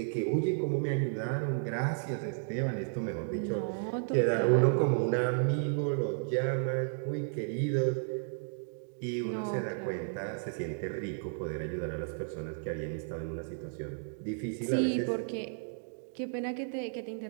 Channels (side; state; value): left; silent; digital silence